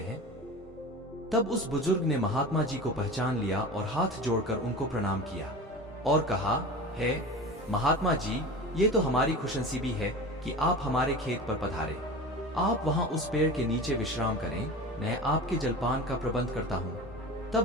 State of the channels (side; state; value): both; normal; correlation 0.32